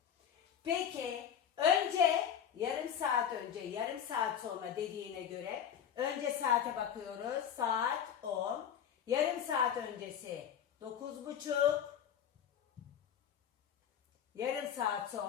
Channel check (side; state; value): right; quieter; 8.9 dB